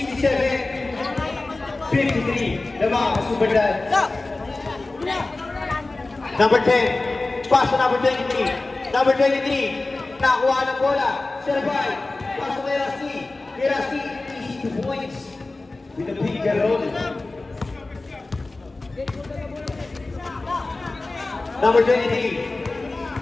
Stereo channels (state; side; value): quieter; right; 3.2 dB